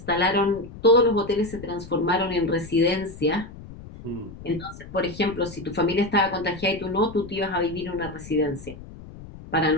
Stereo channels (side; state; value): left; noise; rumble, 15 dB below the sound